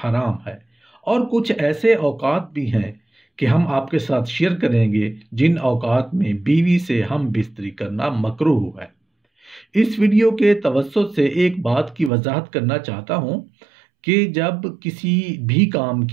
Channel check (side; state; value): left; drops out; at 12.1 s